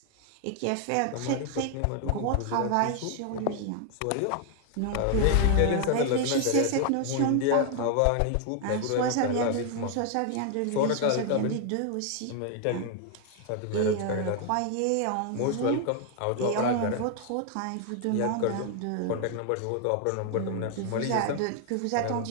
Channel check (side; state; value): both; different; correlation 0.00